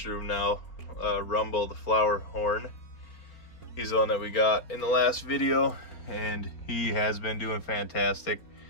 room now, Rumble, the Flowerhorn. He's the one that we got in the last video, and he has been doing fantastic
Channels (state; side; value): late; right; 4.6 ms